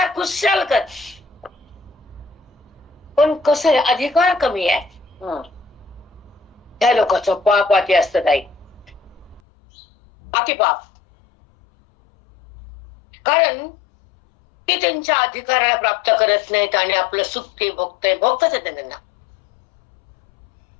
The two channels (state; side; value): drops out; right; at 9.4 s